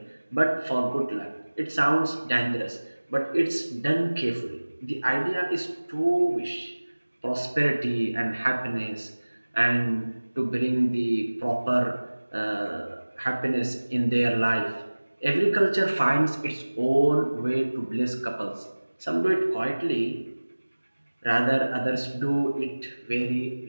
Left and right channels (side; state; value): both; inverted; correlation -1.00